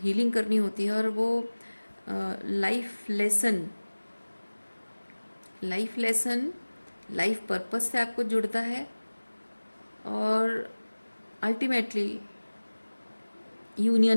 करनी होती है। और वो लाइफ लेसन लाइफ पर्पस से आपको जुड़ता है, और अल्टीमेटली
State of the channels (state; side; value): inverted; both; correlation -1.00